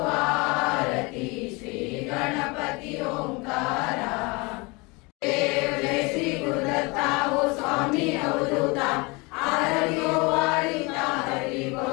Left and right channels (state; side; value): quieter; right; 27.0 dB